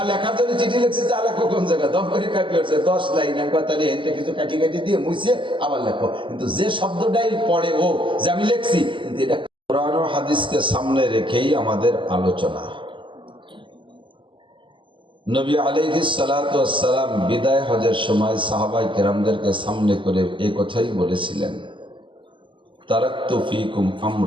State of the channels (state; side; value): late; left; 0.24 ms